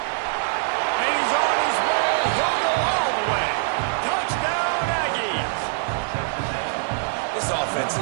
And he's on his way. He'll go all the way. Touchdown, Aggies. This offense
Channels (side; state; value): left; silent; digital silence